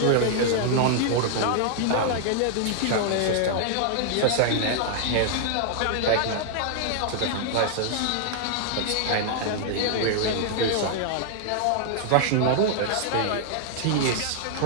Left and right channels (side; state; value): both; different; correlation -0.01